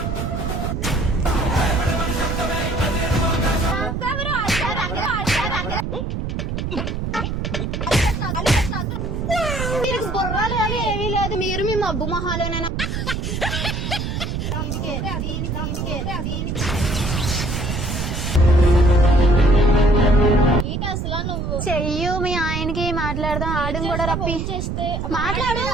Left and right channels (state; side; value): noise; right; rumble, 3 dB below the sound